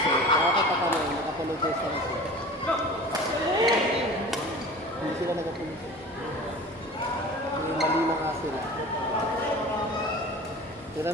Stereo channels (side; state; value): both; normal; correlation 0.39